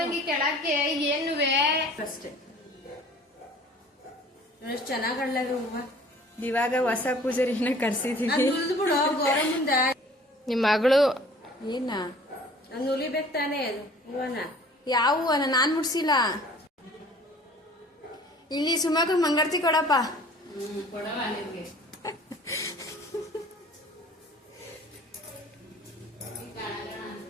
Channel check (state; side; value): normal; both; correlation 0.50